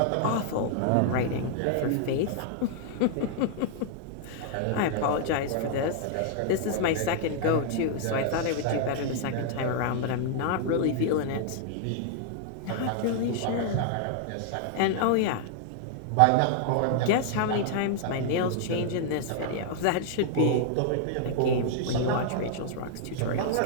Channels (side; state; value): both; different; correlation -0.01